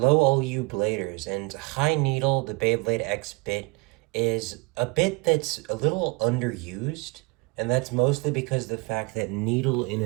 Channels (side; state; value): left; quieter; 28.4 dB